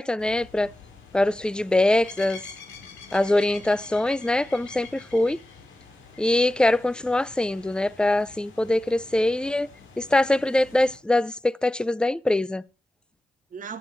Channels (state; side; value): normal; both; correlation 0.94